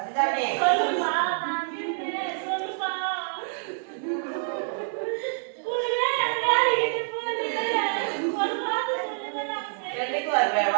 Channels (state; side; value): silent; left; digital silence